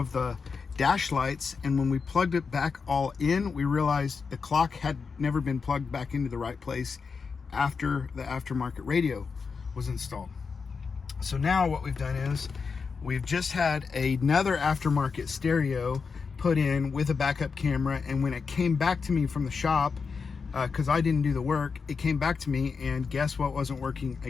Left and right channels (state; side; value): quieter; right; 5.2 dB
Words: the dash lights, and when we plugged it back all in, we realized the clock had never been plugged back into the right place after the aftermarket radio was installed. So now what we've done is we've just had another aftermarket stereo put in with a backup camera, and when it came back to me from the shop, because I didn't do the work, it came back to me, and guess what wasn't working